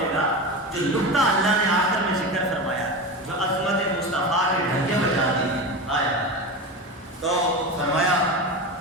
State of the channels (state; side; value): normal; both; correlation 0.23